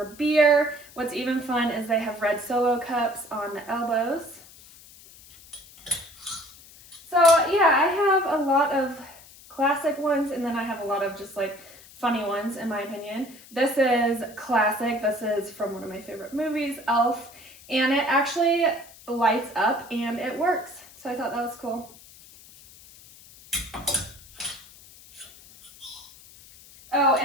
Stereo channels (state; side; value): noise; left; hiss, 22 dB below the sound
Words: beer. What's even fun is they have red Solo cups on the elbows. So yeah, I have a lot of classic ones, and then I have a lot of just like funny ones in my opinion. This is classic. This is from one of my favorite movies, Elf, and it actually lights up and it works. So I thought that was cool. Oh,